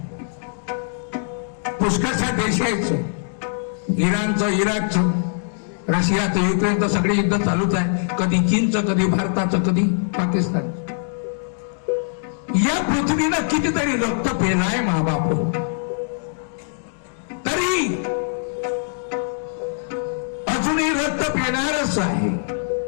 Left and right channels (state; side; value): silent; right; digital silence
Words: पुष्कळशा देश आहेत, इराणचं, इराकचं, रशियाचं, युक्रेनचं, सगळे युद्ध चालूच आहे. कधी चीनचं, कधी भारताचं, कधी पाकिस्तान. या पृथ्वीनं कितीतरी रक्त पेलाय महाबाप, तरी अजूनही रक्त पेणारच आहे.